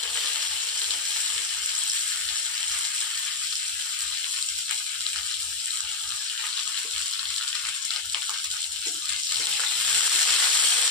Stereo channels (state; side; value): quieter; right; 3.7 dB